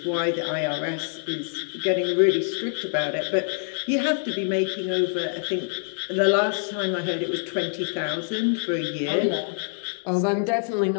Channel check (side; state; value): right; silent; digital silence